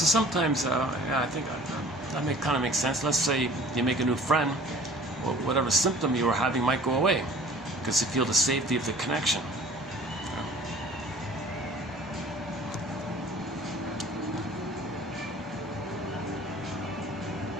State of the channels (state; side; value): normal; both; correlation 0.48